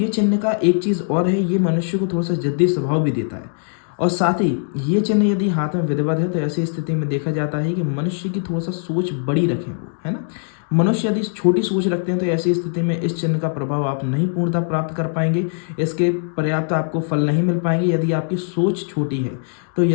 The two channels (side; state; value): right; silent; 65 dB below the other